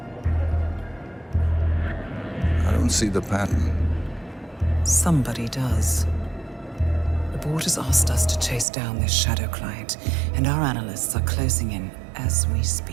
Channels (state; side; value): drops out; left; at 8.7 s